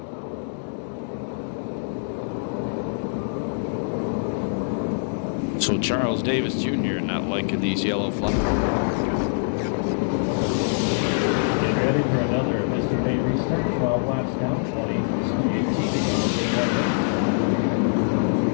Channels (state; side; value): silent; right; digital silence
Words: So Charles Davis Jr. not liking these yellow flags. Ready for another Mr. May restart. 12 laps down, 20. 18.